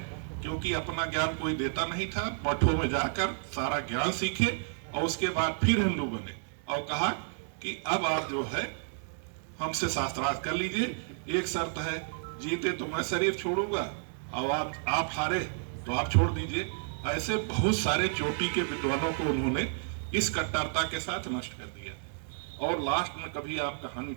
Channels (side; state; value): left; silent; digital silence